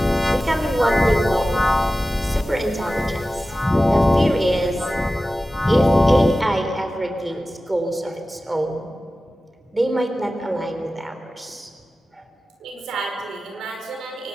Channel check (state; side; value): normal; both; correlation 0.95